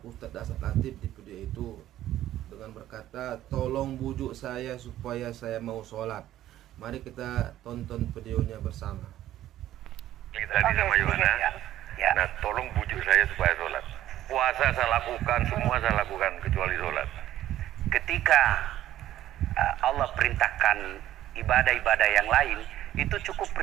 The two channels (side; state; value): left; quieter; 13.2 dB